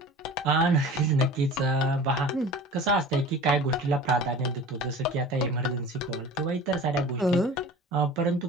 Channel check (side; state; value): both; normal; correlation 0.40